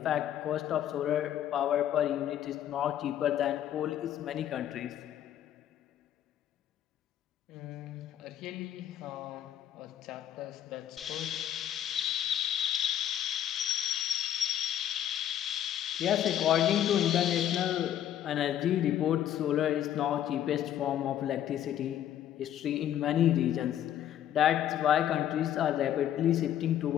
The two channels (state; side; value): quieter; right; 10.9 dB